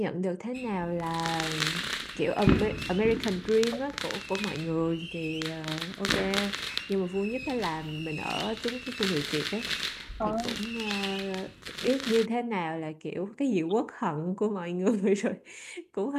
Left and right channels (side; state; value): both; identical; correlation 1.00